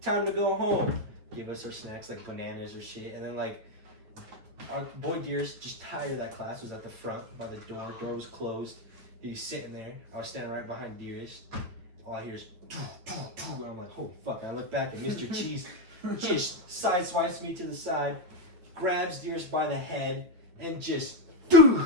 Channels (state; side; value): late; left; 9.0 ms